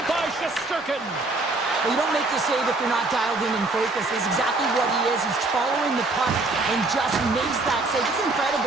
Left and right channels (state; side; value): quieter; left; 3.2 dB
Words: by Shesterkin. Well, you don't make the save if you're not dialed in and focused. It's exactly what he is. He's following the puck and just makes that save. It's